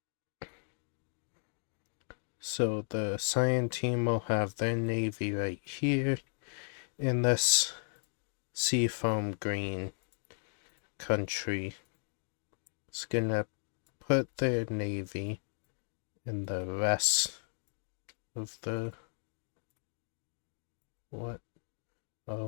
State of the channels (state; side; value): silent; right; digital silence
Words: So the Cyan team will have their navy right here in this seafoam green country. It's gonna put their navy in the rest of the what?